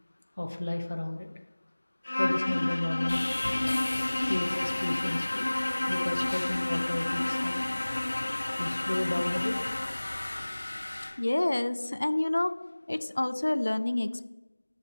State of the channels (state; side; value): inverted; both; correlation -1.00